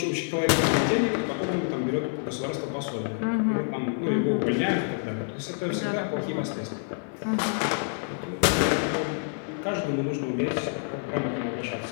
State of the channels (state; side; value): silent; right; digital silence